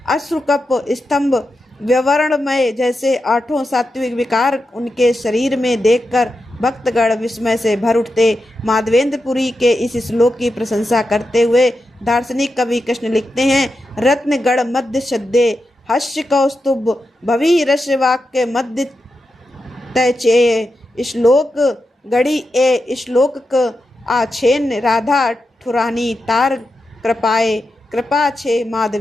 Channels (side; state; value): both; normal; correlation 0.88